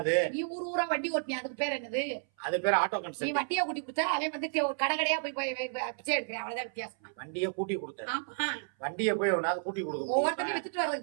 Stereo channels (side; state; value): left; silent; 57 dB below the other